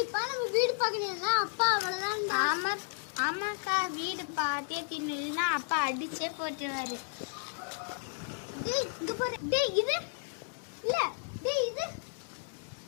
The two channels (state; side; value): silent; right; digital silence